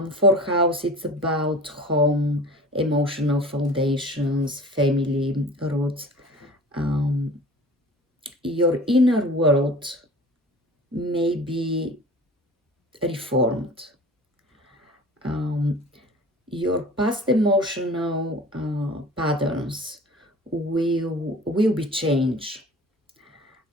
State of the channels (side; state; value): both; normal; correlation 0.41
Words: fourth house, it's about home, emotional foundations, family roots. Your inner world may be reformed. Your past emotional patterns will be changed.